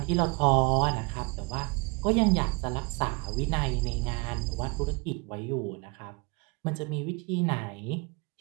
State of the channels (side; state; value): left; quieter; 29.7 dB